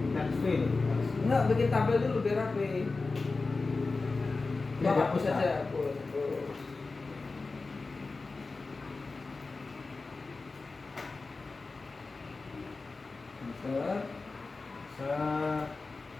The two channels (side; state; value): right; quieter; 3.8 dB